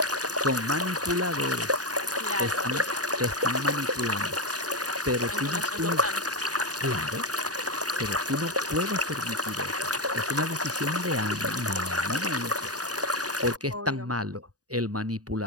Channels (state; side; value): late; left; 0.68 ms